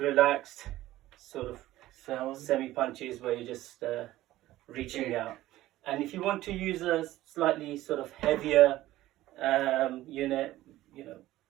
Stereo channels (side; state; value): left; quieter; 15.6 dB